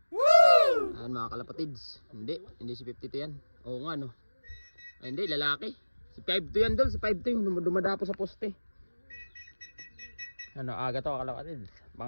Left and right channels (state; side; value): inverted; both; correlation -1.00